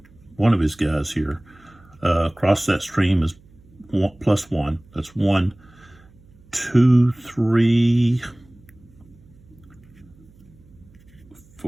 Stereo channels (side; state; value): right; noise; hum, 27 dB below the sound